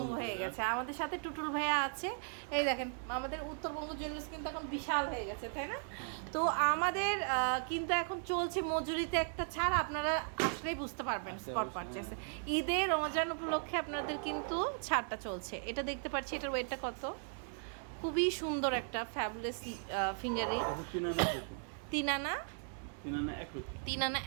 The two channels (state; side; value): silent; left; 53 dB below the other